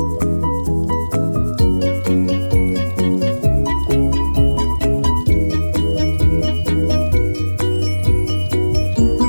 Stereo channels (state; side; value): inverted; both; correlation -1.00